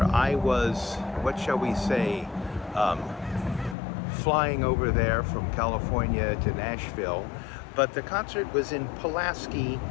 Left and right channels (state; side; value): drops out; right; at 3.8 s